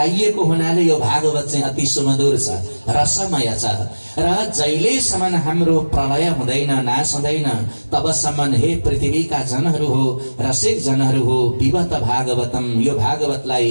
हुनाले यो भागवत चाहिँ अति सुमधुर छ, रसमय छ। र जहिलेसम्म हाम्रो प्रलय हुँदैन, नाश हुँदैन, तबसम्म हे पृथ्वीका जनहरू हो, रसिक जनहरू हो, पिबत भागवतम, यो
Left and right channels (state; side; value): inverted; both; correlation -1.00